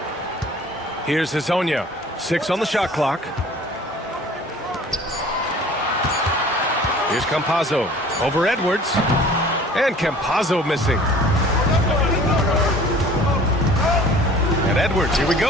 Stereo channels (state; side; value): normal; both; correlation 0.48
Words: Here's Hezonja. 6 on the shot clock. Here's Campazzo. Over Edwards. And Campazzo missing. And Edwards, here we